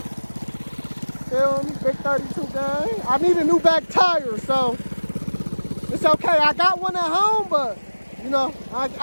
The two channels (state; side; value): inverted; both; correlation -1.00